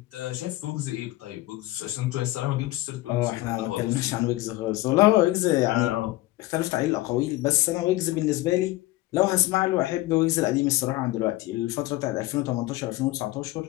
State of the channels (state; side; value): quieter; right; 18.0 dB